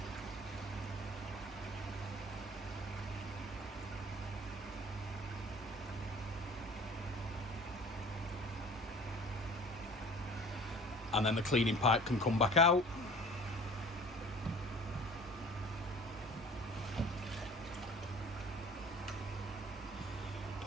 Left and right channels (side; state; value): both; normal; correlation 0.46